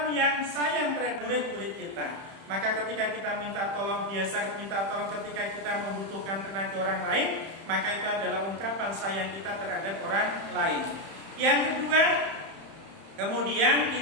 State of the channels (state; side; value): late; left; 31 ms